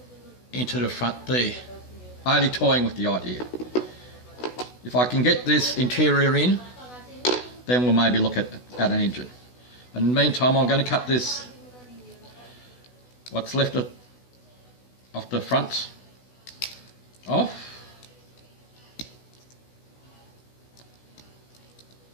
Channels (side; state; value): right; late; 16 ms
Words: into the front there. Only toying with the idea. If I can get this interior in, then we'll maybe look at an engine. In the meantime, I'm going to cut this, what's left of the front off,